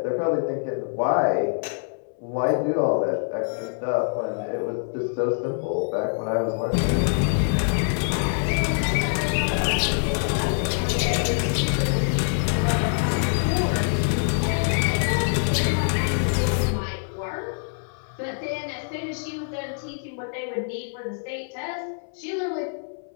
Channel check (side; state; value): right; silent; 62 dB below the other